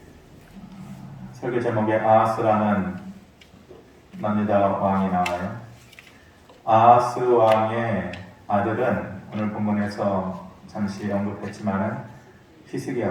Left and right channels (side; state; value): both; identical; correlation 1.00